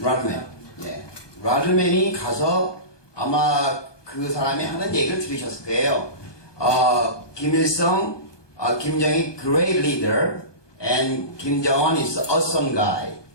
예. 라드맨이 가서 아마 그 사람이 하는 얘기를 들으셨을 거예요. 김일성, 김정일 great leader and Kim Jong-un is awesome guy.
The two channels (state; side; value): late; right; 1.2 ms